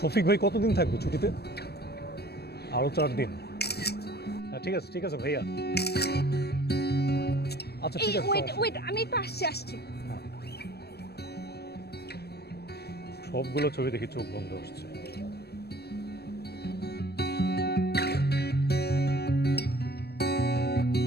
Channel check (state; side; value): late; right; 0.47 ms